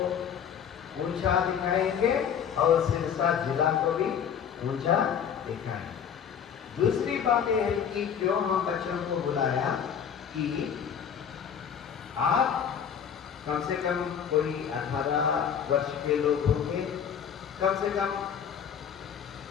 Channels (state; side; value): quieter; right; 8.0 dB